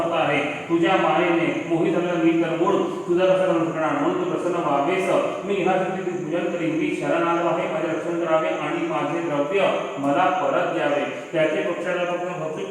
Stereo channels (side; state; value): both; identical; correlation 1.00